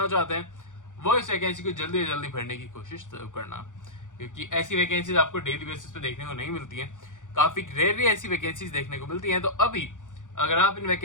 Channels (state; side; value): late; right; 0.87 ms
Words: चाहते हैं वो इस वैकेंसी को जल्दी से जल्दी भरने की कोशिश करना, क्योंकि ऐसी वैकेंसीज आपको डेली बेसिस पे देखने को नहीं मिलती हैं। काफी रेयरली ऐसी वैकेंसीज देखने को मिलती हैं। तो अभी अगर आप इन